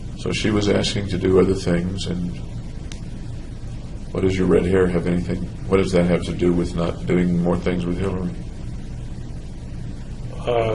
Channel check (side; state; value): both; identical; correlation 1.00